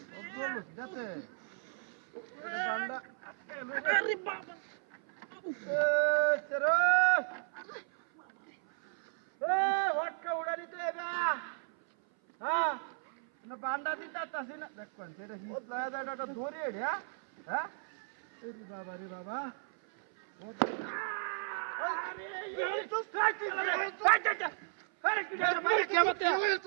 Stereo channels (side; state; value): left; silent; 55 dB below the other